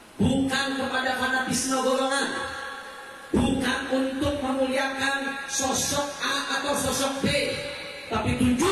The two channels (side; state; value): both; identical; correlation 1.00